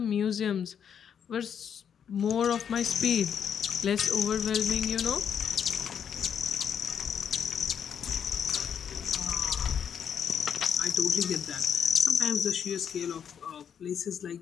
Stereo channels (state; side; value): quieter; right; 8.0 dB